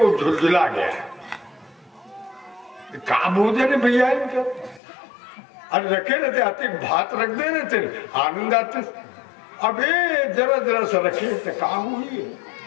झुलझुला गया, कहा भोजन है भैया इनका, अरे रखे रहते आते भात रख दे रहे थे, आनंद आते। अब ये जरा जरा सा रखे थे, कहा हुई है।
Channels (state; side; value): drops out; right; at 4.8 s